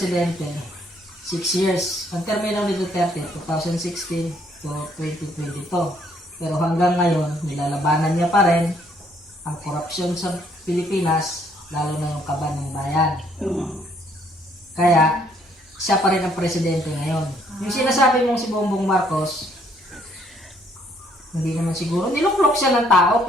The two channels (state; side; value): normal; both; correlation 0.66